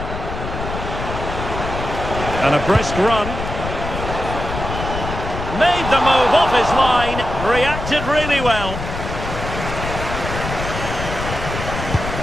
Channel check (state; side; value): noise; left; rumble, 6 dB below the sound